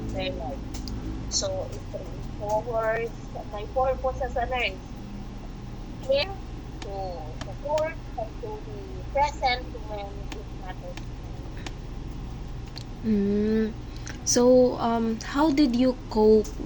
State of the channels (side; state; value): both; identical; correlation 1.00